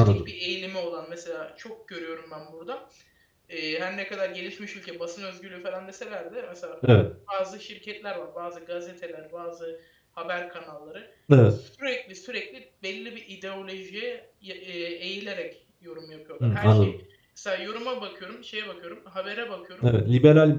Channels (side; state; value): both; identical; correlation 1.00